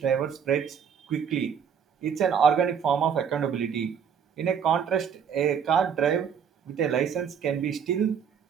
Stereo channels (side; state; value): left; quieter; 7.5 dB